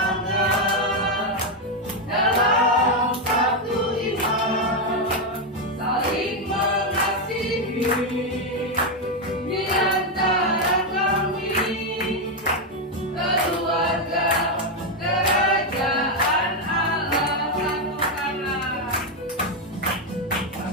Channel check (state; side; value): normal; both; correlation 0.04